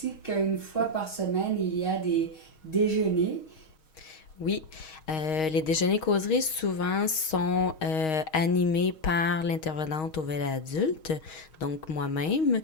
qu'une fois par semaine, il y a des déjeuners. Oui, les déjeuners causeries souvent sont animés par l'intervenante au volet adulte, donc moi-même.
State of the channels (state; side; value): late; right; 6.4 ms